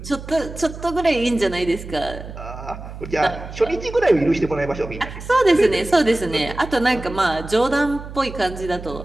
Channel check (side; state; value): right; noise; hum, 12 dB below the sound